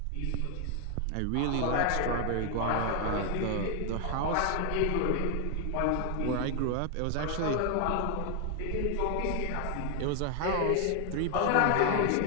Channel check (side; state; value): both; different; correlation 0.00